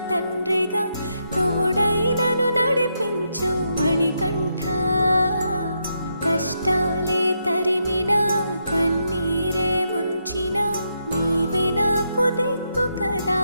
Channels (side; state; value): both; inverted; correlation -0.81